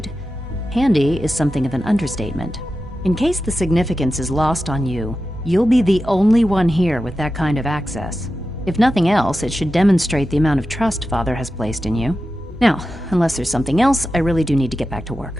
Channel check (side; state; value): both; normal; correlation 0.92